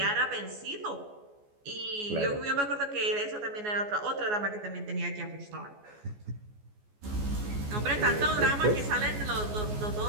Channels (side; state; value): left; late; 14 ms